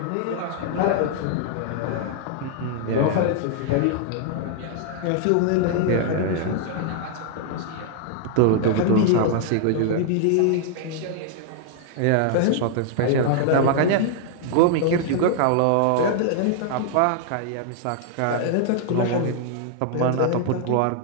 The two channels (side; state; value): both; different; correlation -0.01